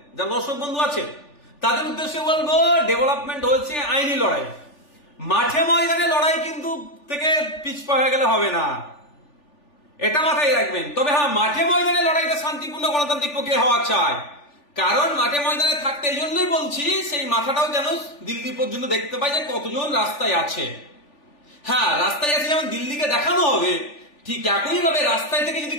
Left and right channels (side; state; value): right; late; 3.4 ms